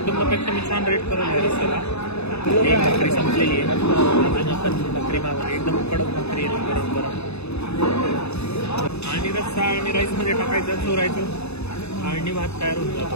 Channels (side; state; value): right; late; 0.80 ms